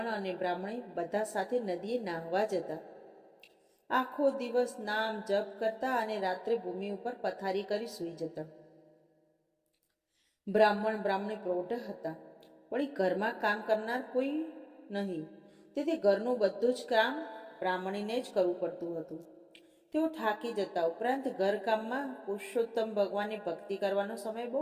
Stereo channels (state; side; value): identical; both; correlation 1.00